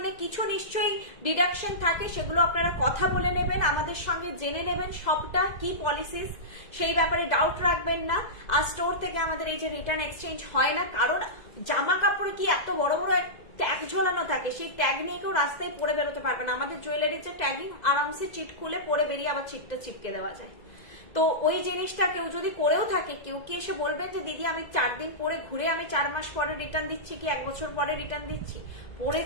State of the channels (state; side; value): late; right; 2.0 ms